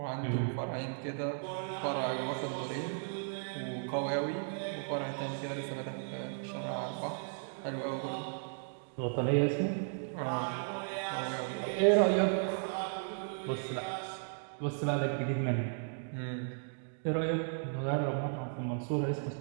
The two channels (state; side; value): silent; left; digital silence